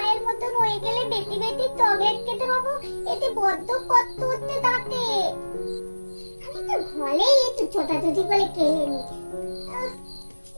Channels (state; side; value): inverted; both; correlation -1.00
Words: মতন হয়ে গেলে বেশি বেশি চকলেট খেতে পাবো, এতে বড্ড কষ্ট হচ্ছে দাঁতে। আমি তো ঘরেই একটু ছোটাছুটি করে খেলে নি।